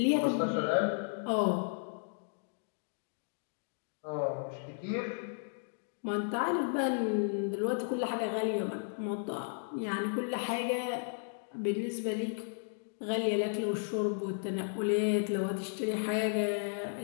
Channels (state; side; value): silent; right; digital silence